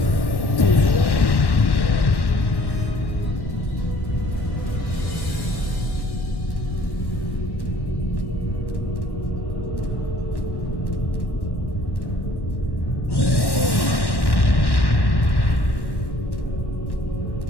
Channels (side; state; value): right; late; 1.1 ms